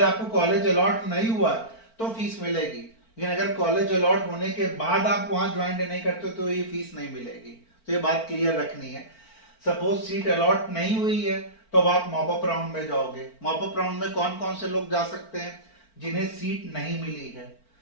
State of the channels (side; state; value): right; late; 4.4 ms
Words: आपको कॉलेज अलॉट नहीं हुआ तो फीस मिलेगी, लेकिन अगर कॉलेज अलॉट होने के बाद आप वहां ज्वाइन नहीं करते तो ये फीस नहीं मिलेगी। तो ये बात क्लियर रखनी है। सपोज सीट अलॉट नहीं हुई है तो अब आप मॉपअप राउंड में जाओगे। मॉपअप राउंड में कौन कौन से लोग जा सकते हैं? जिन्हें सीट नहीं मिली है।